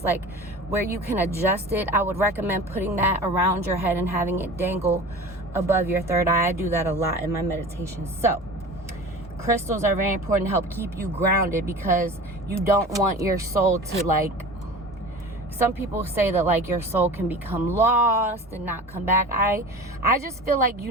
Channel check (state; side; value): normal; both; correlation 0.37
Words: like where you can adjust it. I would recommend putting that around your head and having it dangle above your third eye. I do that a lot in my meditations. So crystals are very important to help keep you grounded, because you don't want your soul to like, some people say that like your soul can become lost and not come back. I just feel like you